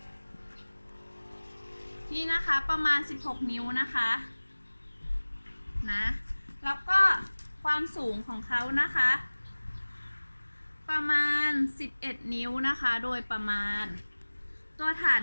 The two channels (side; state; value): both; inverted; correlation -1.00